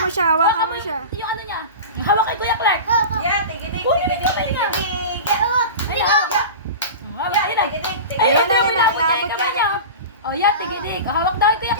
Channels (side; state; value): both; inverted; correlation -0.30